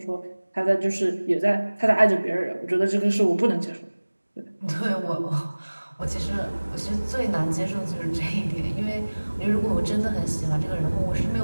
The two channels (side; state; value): both; inverted; correlation -1.00